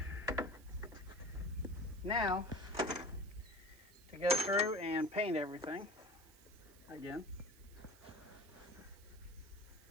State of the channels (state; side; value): noise; right; hiss, 23 dB below the sound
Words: now to go through and paint everything again.